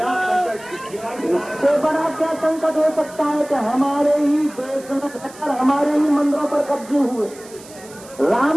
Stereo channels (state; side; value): noise; right; hiss, 20 dB below the sound